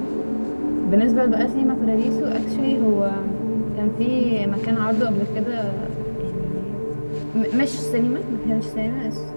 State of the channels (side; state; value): both; inverted; correlation -1.00